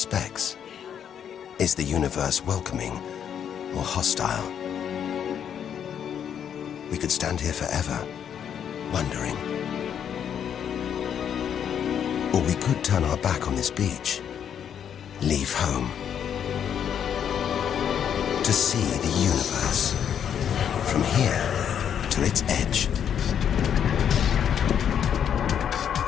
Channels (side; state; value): right; quieter; 8.7 dB